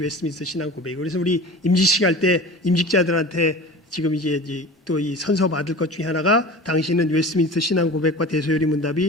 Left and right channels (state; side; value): normal; both; correlation 0.37